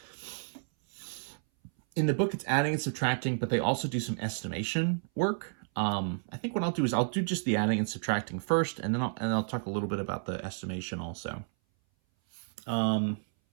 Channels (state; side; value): silent; left; 57 dB below the other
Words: in the book, it's adding and subtracting, but they also do some estimation work. I think what I'll do is I'll do just the adding and subtracting first, and then I'll talk a little bit about the estimation also.